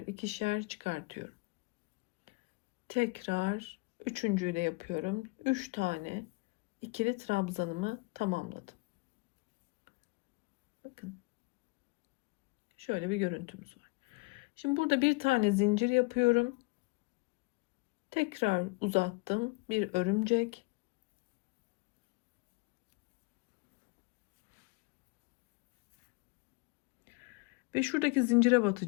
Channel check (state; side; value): quieter; right; 27.1 dB